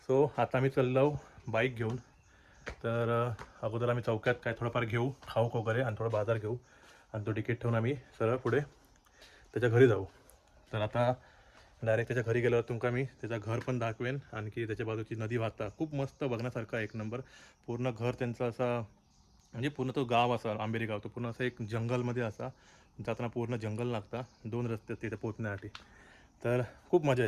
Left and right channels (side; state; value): both; identical; correlation 1.00